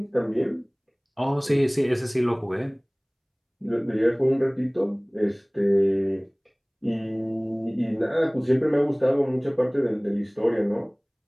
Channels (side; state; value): both; identical; correlation 1.00